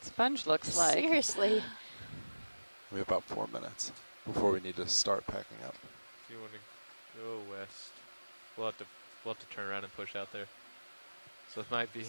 sponge looks like. Seriously. We have about 4 minutes before we need to start packing up. If you want to go west, we'll have to turn around and push out there. So it might be.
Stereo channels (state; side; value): inverted; both; correlation -1.00